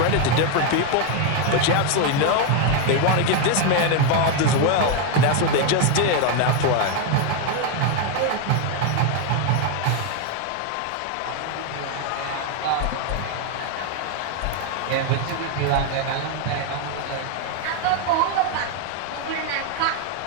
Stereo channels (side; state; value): both; different; correlation 0.01